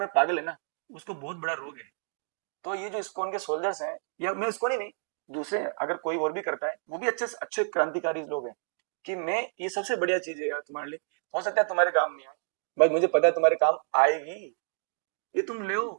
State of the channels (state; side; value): silent; left; digital silence